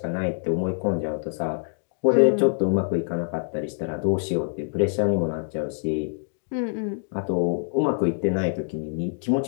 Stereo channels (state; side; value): silent; right; digital silence